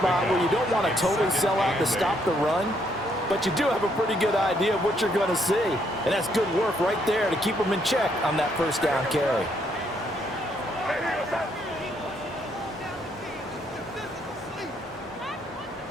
where you don't want to totally sell out to stop the run, but you do have a pretty good idea of what you're going to see. And that's good work right there to keep them in check on that first down carry.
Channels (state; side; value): normal; both; correlation 0.72